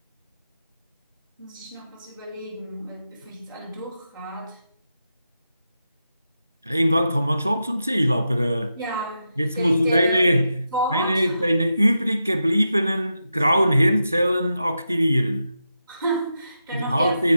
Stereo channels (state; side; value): inverted; both; correlation -0.88